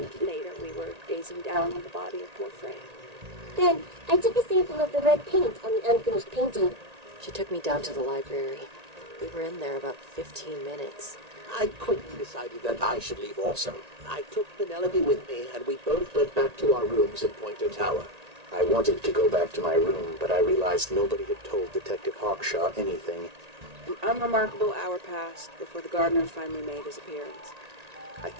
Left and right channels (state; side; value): late; left; 1.8 ms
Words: later, we were gazing down on the body of poor Freya. Then, I took a sample of the red paint on the unfinished painting. She took me down to the library. We were in there about 15 minutes. I quickly decided that I should leave also. I took Penelope with me, and we both went back to our rooms in Pointer Tower. I wanted to go back to my room, but I realized nobody had told Detective Hawkshaw anything. An unremarkable hour passed before the gardener finally made his appearance. I